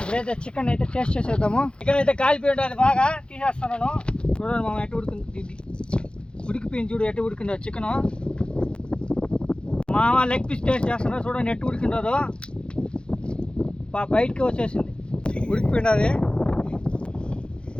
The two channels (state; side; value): late; right; 0.053 ms